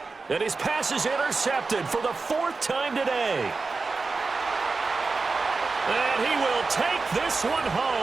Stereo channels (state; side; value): quieter; left; 4.1 dB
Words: And his pass is intercepted for the 4th time today. And he will take this one